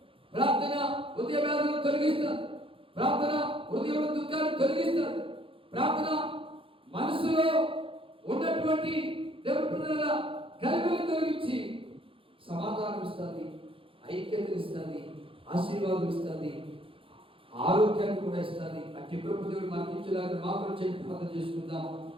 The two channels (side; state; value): left; late; 0.26 ms